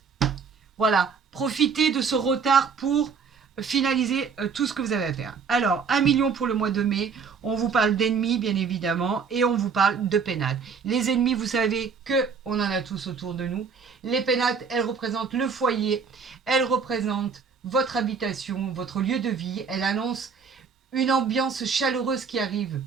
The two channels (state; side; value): quieter; left; 5.7 dB